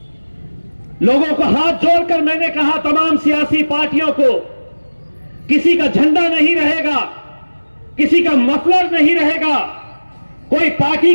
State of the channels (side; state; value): both; inverted; correlation -1.00